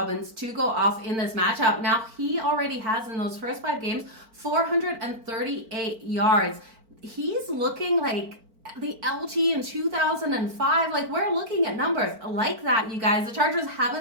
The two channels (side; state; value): left; late; 4.5 ms